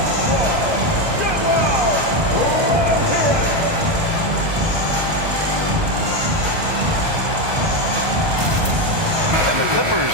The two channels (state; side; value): late; left; 1.2 ms